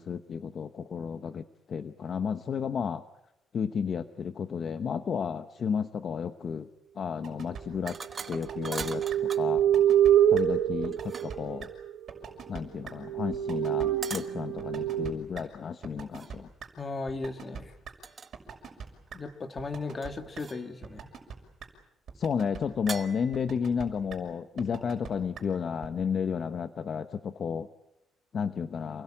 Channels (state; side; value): normal; both; correlation 0.61